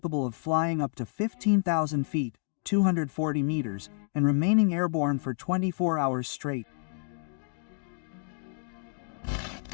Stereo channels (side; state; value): right; silent; digital silence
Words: of flying up to 15,000 feet, 240 meters, and remaining airborne for 24 hours straight.